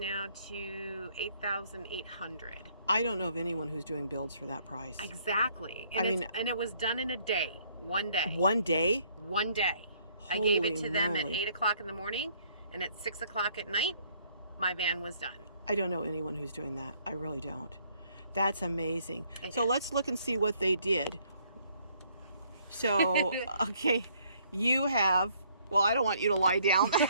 to $8,800. I don't know of anyone who's doing builds for that price. Exactly. And it was done in a day, one day. One day? One day. I gave it to them at 8 o'clock in the morning, and at 6 o'clock at night, my van was done. I don't know anyone who's doing that. I really don't. That's amazing. So let's look and see what they did. So, okay, you have, well, I don't want you to lie down.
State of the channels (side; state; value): both; inverted; correlation -0.65